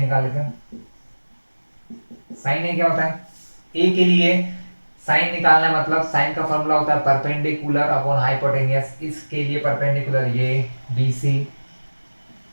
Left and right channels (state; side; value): inverted; both; correlation -1.00